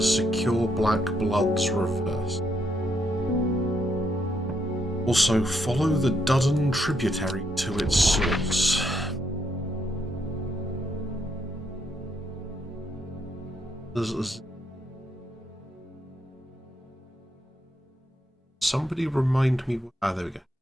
secure black blood's reverse. Also follow the Dudden tributary to its source. Somebody remind me. There we go.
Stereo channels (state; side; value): normal; both; correlation 0.75